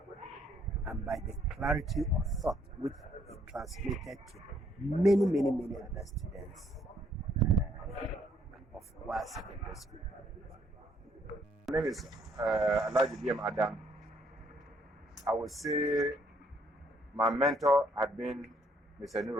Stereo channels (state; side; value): normal; both; correlation 0.68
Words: and by the clarity of thought which he transmitted to many other students of our secondary school. My name is Alhaji Adam. I would say my mentor had been Mr.